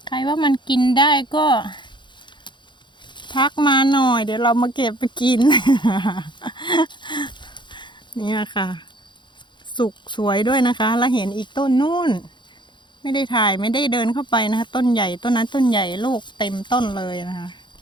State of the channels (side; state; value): right; late; 0.23 ms